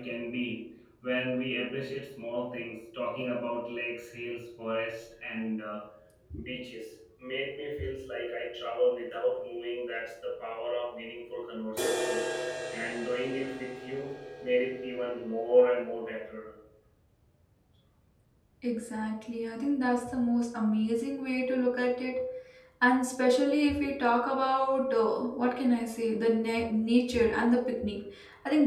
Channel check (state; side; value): identical; both; correlation 1.00